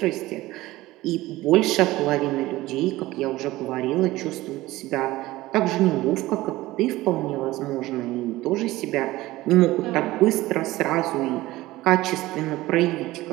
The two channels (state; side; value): quieter; left; 17.8 dB